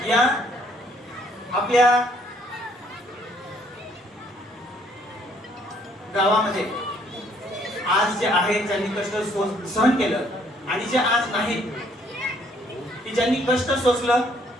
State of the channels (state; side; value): normal; both; correlation 0.65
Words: या आपल्या गावामध्ये आज जे आहेत ज्यांनी कष्ट सहन केलं आणि जे आज नाहीत की ज्यांनी कष्ट सोसलं